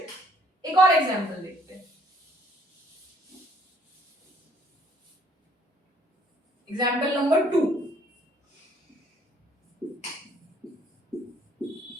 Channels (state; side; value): normal; both; correlation 0.62